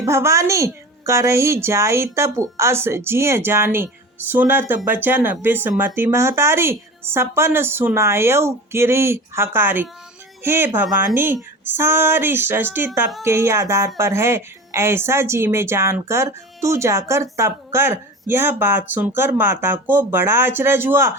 भवानी, करही जाई तप अस जिय जानी, सुनत बचन बिस्मति महतारी, सपन सुनायऊ गिरि हकारी। हे भवानी, सारी सृष्टि तप के ही आधार पर है, ऐसा जी में जानकर तू जाकर तप कर। यह बात सुनकर माता को बड़ा अचरज हुआ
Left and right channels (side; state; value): both; normal; correlation 0.34